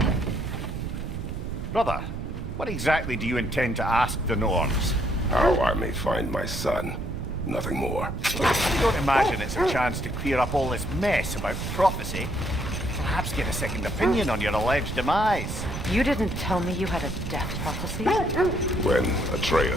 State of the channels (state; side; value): noise; right; rumble, 6 dB below the sound